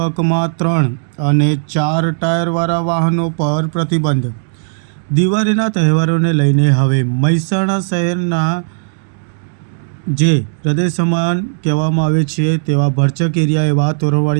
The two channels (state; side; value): silent; left; digital silence